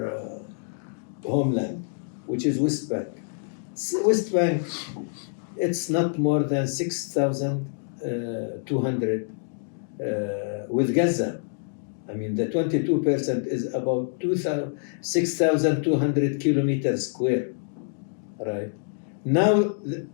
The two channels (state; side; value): silent; right; digital silence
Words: homeland, which is West Bank. West Bank, it's not more than 6,200 with Gaza. I mean, the 22% is about 6,200 kilometers square, right? Now